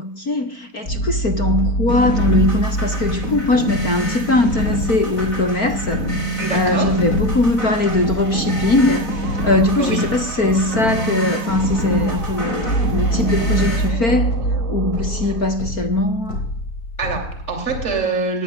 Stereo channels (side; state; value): right; late; 4.4 ms